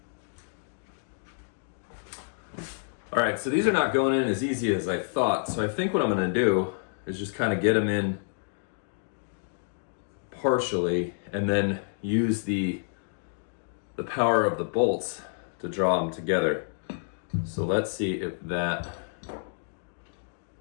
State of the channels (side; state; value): right; silent; digital silence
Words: right, so these are not going in as easy as I thought. So I think what I'm gonna do is just kind of get them in partially and then use the power of the bolts to draw them together. So let's see if that